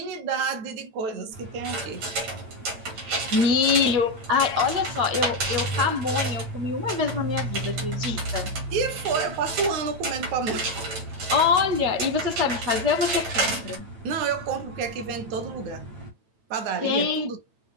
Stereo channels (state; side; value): late; left; 9.0 ms